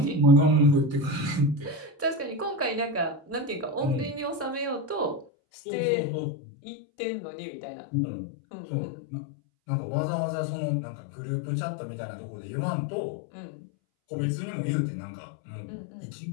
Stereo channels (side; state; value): right; drops out; at 5.2 s